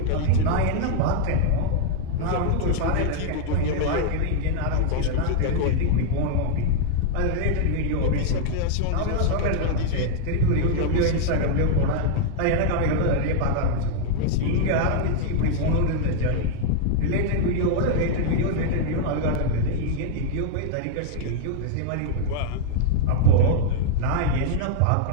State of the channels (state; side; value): different; both; correlation 0.00